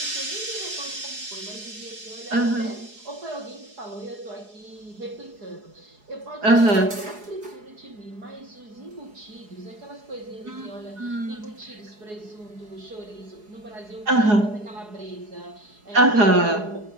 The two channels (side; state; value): left; late; 4.8 ms